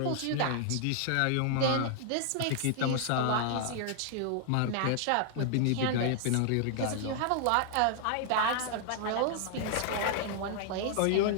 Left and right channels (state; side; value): different; both; correlation 0.00